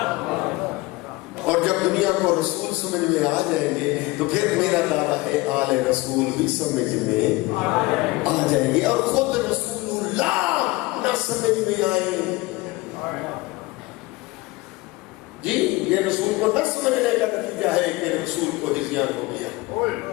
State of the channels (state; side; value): quieter; right; 21.4 dB